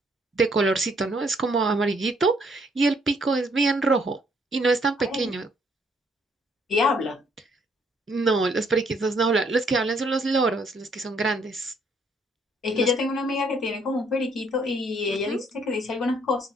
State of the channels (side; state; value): both; normal; correlation 0.67